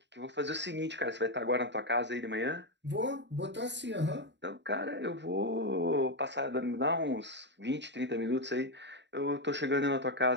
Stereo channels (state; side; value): late; left; 0.52 ms